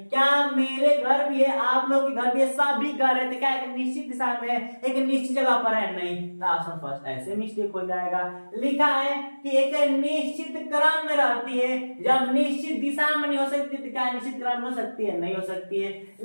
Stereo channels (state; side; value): inverted; both; correlation -1.00